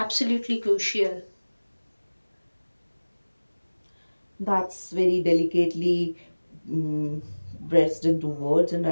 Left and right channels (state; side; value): inverted; both; correlation -1.00